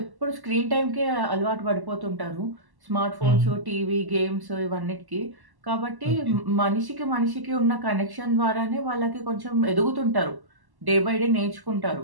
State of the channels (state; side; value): late; left; 1.1 ms